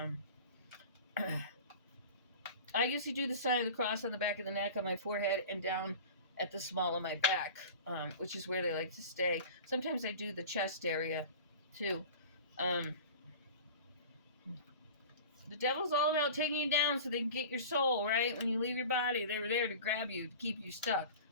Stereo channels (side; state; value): both; inverted; correlation -0.37